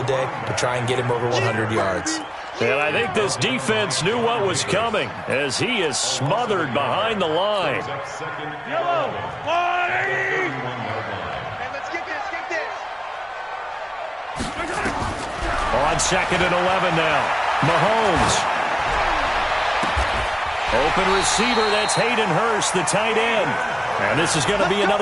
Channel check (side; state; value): both; identical; correlation 1.00